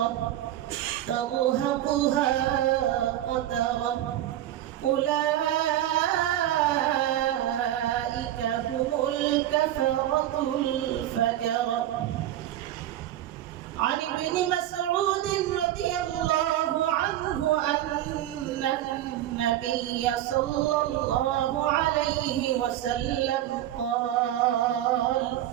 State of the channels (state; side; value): quieter; left; 12.9 dB